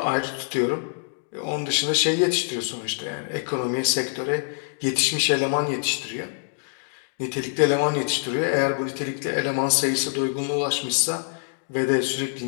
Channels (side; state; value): right; silent; digital silence